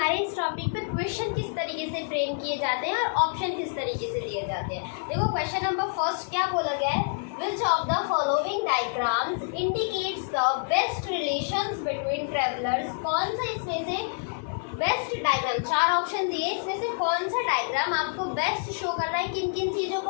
इस टॉपिक पे क्वेश्चन किस तरीके से फ्रेम किए जाते हैं और ऑप्शन किस तरीके से दिए जाते हैं। देखो क्वेश्चन नंबर फर्स्ट क्या बोला गया है, Which of the following diagrams indicates the best relations between travelers? कौन सा इसमें से बेस्ट डायग्राम, 4 ऑप्शन दिए, इसमें से कौन सा डायग्राम आपको बेस्ट शो कर रहा है किन किन चीज़ों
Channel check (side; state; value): right; silent; digital silence